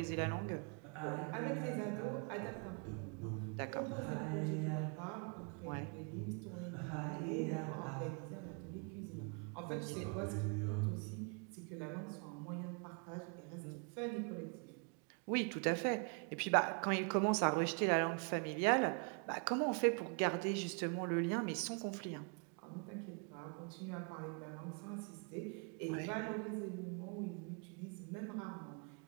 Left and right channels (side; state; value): left; quieter; 37.6 dB